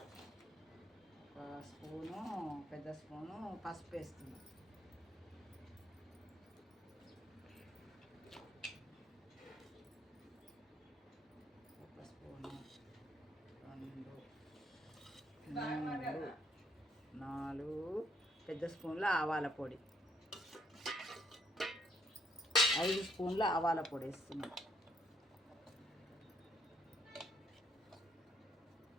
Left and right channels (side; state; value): both; normal; correlation 0.69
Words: స్పూను, పెద్ద స్పూను పసుపు వేస్తున్నాం. ఒక స్పూను, 2, 3, 4 పెద్ద స్పూన్ల ఆవాల పొడి, 5 స్పూన్ల ఆవాల పొడి వేస్తున్నాం.